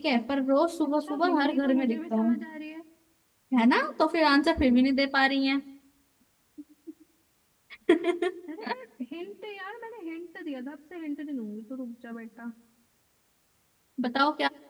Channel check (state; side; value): identical; both; correlation 1.00